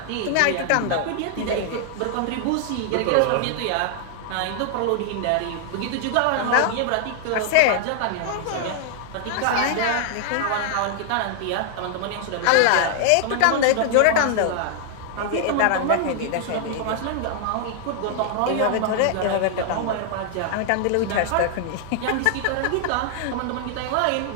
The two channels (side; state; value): both; different; correlation 0.00